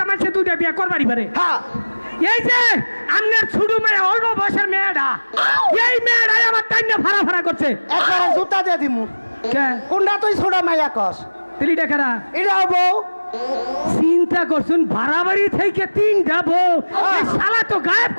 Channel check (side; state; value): both; inverted; correlation -1.00